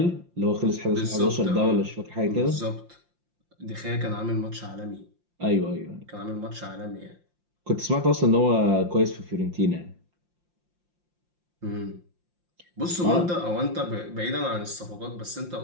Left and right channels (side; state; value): left; late; 5.7 ms